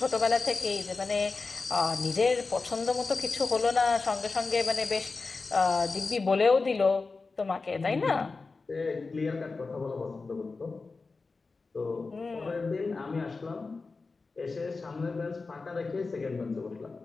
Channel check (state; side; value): quieter; right; 4.1 dB